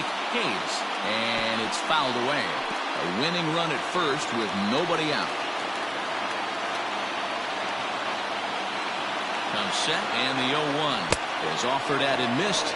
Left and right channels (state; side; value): identical; both; correlation 1.00